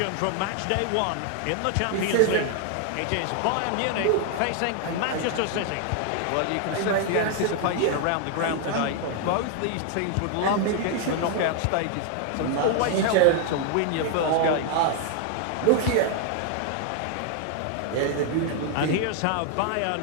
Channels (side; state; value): both; different; correlation 0.00